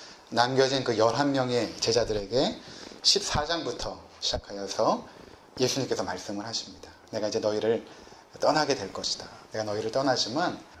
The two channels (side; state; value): both; identical; correlation 1.00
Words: 남겨진 그 11명의 제자들에게 14장부터 시작하여서 예수님께서 말씀을 하십니다. 내가 이제 너희를 떠나게 될 것이다. 내가 너희를 떠나지만